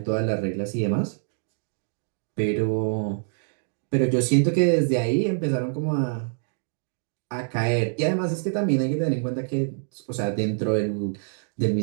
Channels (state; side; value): silent; left; digital silence